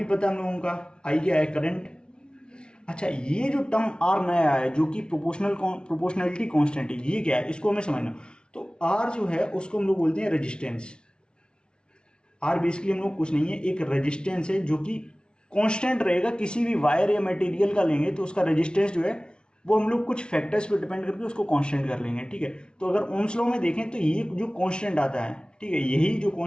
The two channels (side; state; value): right; late; 0.056 ms